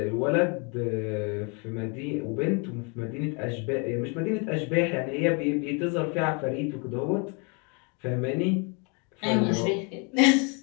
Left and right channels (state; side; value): quieter; right; 33.9 dB